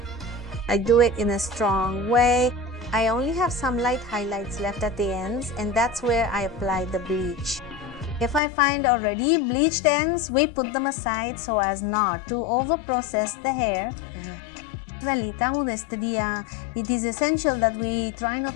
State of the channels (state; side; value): drops out; right; at 8.4 s